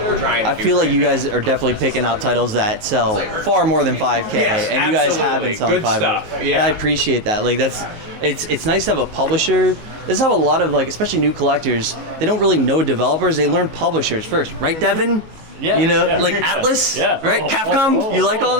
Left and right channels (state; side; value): late; left; 19 ms